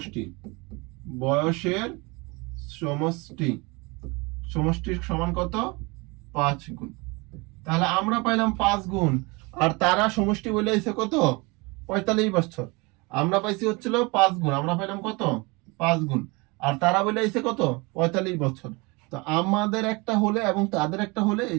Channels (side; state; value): left; quieter; 26.7 dB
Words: সমান কত? 5 গুণ। তাহলে আমরা পাইলাম 5 গুণ, আর তারা সমষ্টি বলে এসে কত? 45 বছর। আমরা পাইছি হচ্ছিল 5 গুণ, আমরা পাইলাম কত? 5 গুণ। আর তারা বলে এসে কত? 45 বছর। তো আমাদের একটা হলে এবং তাদের একটা হলে এই